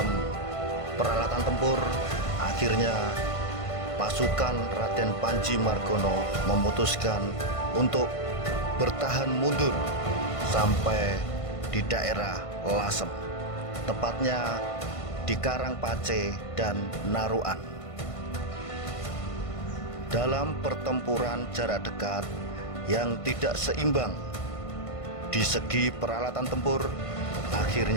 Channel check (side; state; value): right; late; 1.5 ms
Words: peralatan tempur, akhirnya pasukan Raden Panji Margono memutuskan untuk bertahan mundur sampai di daerah Lasem, tepatnya di Karangpace dan Naruan. Dalam pertempuran jarak dekat yang tidak seimbang di segi peralatan tempur,